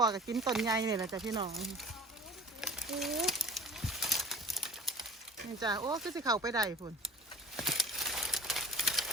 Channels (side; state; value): both; normal; correlation 0.40